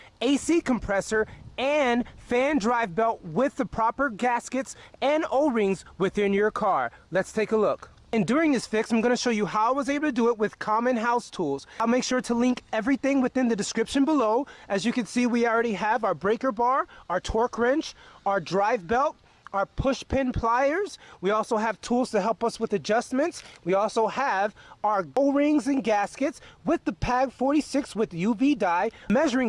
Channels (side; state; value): both; identical; correlation 1.00